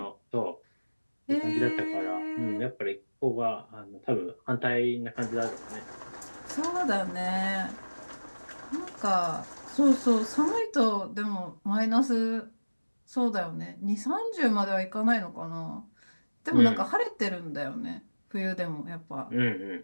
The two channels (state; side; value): inverted; both; correlation -1.00